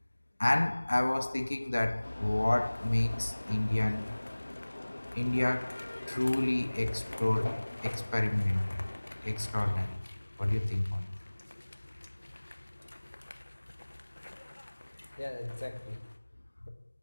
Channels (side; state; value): both; inverted; correlation -1.00